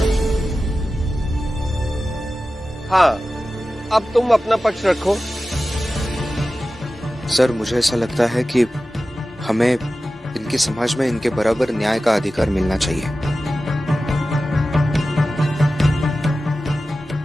हाँ, अब तुम अपना पक्ष रखो। सर, मुझे ऐसा लगता है कि हमें इनके समाज में इनके बराबर न्याय का अधिकार मिलना चाहिए।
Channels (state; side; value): normal; both; correlation 0.94